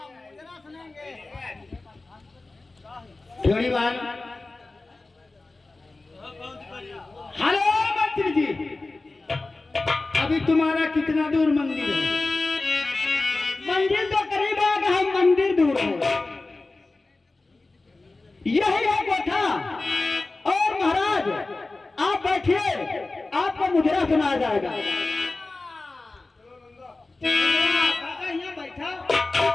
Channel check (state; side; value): quieter; right; 3.3 dB